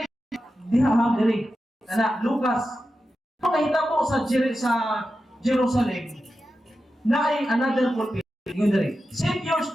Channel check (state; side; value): normal; both; correlation 0.91